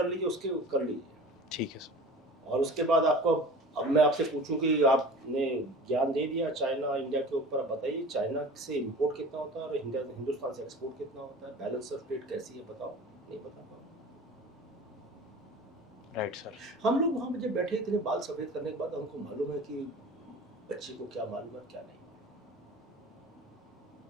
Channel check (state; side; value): normal; both; correlation 0.40